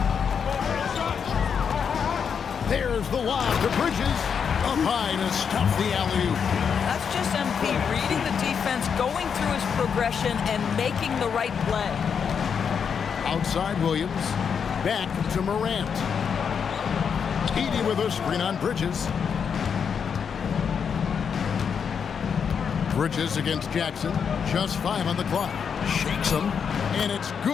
There's the lob to Bridges. Up high to stop the alley-oop. That's just MP reading the defense, going through his progression, and making the right play. Outside Williams. Back to Morant. Edey with a screen on Bridges. Bridges against Jackson. Just 5 on the clock. Shakes him. And it's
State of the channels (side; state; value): right; quieter; 6.8 dB